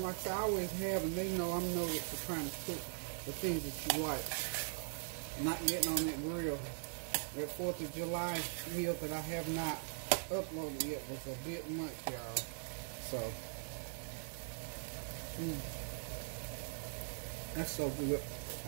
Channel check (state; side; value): silent; left; digital silence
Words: like I always have, and they know I'm noted for trying to cook the things that you like. Not getting on that grill. That 4th of July meal that I have not uploaded yet was a bit much, y'all. So, that's so good.